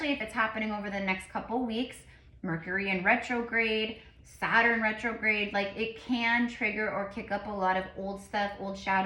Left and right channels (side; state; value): both; identical; correlation 1.00